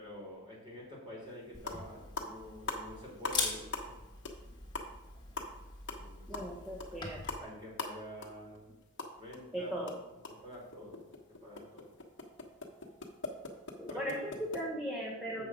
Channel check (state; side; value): normal; both; correlation 0.17